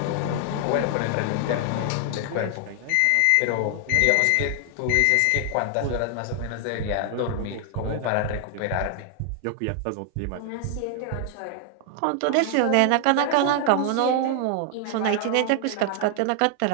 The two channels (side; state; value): both; different; correlation 0.00